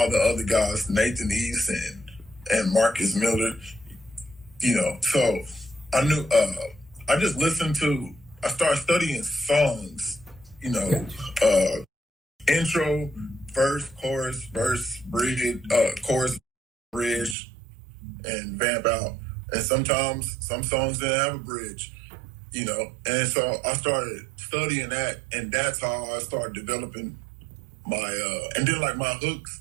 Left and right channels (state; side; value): drops out; left; at 17.4 s